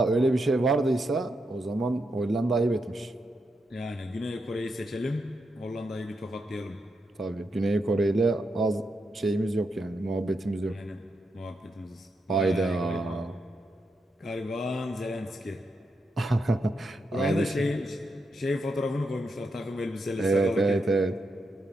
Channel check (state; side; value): normal; both; correlation 0.83